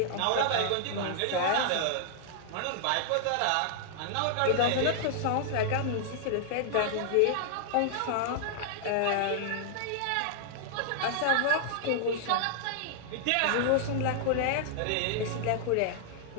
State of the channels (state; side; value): different; both; correlation -0.01